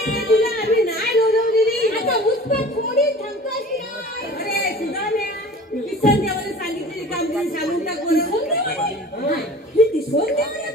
तुला आम्ही नाही लोलवलेली. आता मुस्कट थोडी थांबतोय की नाही अरे सुधाम्या किसन देवाने सांगितलेली कामगिरी सांगून टाक बरं. ही दिसवून देवाने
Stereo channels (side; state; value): both; normal; correlation 0.43